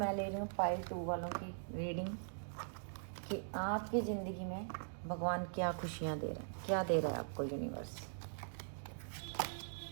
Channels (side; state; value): left; silent; digital silence